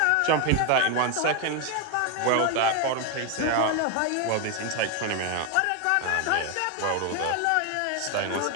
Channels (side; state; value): both; different; correlation 0.01